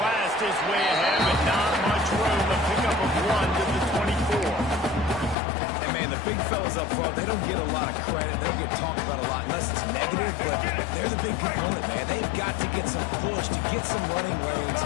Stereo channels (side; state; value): right; drops out; at 5.4 s